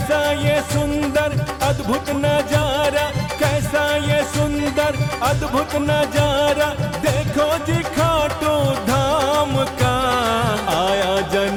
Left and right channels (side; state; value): both; identical; correlation 1.00